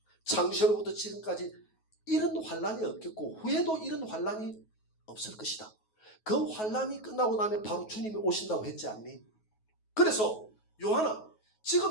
창세로부터 지금까지 이런 환난이 없겠고 후에도 이런 환난이 없을 것이다. 그 환난이 끝나고 나면 바로 주님이 오신다고 했지 않니? 그래서 요한아,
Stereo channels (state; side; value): late; right; 9.3 ms